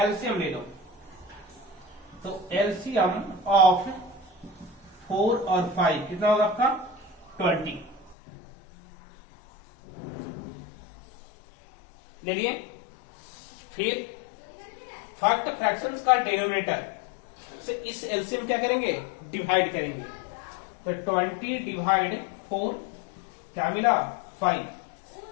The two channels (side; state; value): right; drops out; at 8.2 s